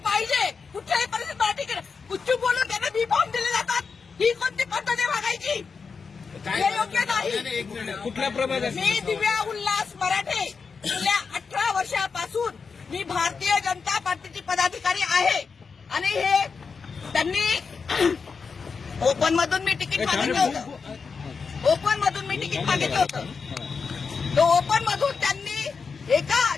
पाहिजे कुठल्याही परिस्थितीत. मला तिकीट कुठून बोलून त्यांना बी फॉर्म दिले जातात. ही कोणती पद्धत आहे मागायची? हे योग्य नाही. कुठल्या प्रभागात? मी दिव्या उल्हास मराठे. गेल्या 18 वर्षापासून मी भारतीय जनता पार्टीची पदाधिकारी आहे. आणि हे त्यांनी ओपन मधून मी तिकीट मागितलं होतं. ओपन मधून मी तिकीट मागितलं होतं. तो ओपन मधून त्यांनी एका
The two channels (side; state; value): right; quieter; 5.3 dB